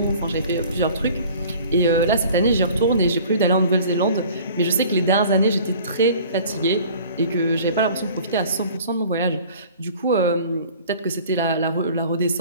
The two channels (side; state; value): both; inverted; correlation -0.47